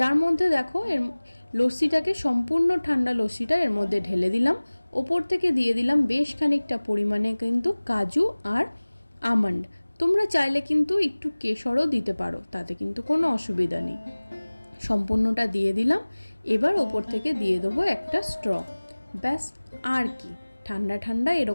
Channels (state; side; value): inverted; both; correlation -1.00